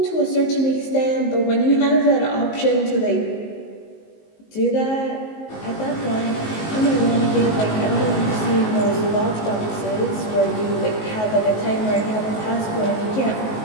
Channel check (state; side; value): late; right; 19 ms